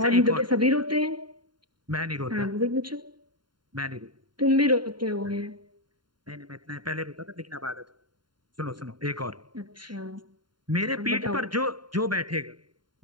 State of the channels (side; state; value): left; late; 0.72 ms